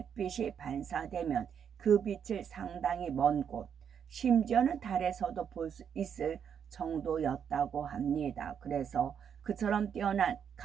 빛이 반사되면 그 빛을 상당히 먼 곳, 심지어는 달에서도 볼 수 있을 정도였다고 합니다. 그래서 그처럼 뛰어난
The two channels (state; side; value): quieter; left; 7.9 dB